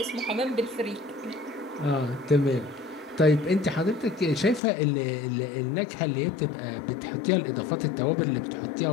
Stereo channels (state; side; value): drops out; right; at 4.6 s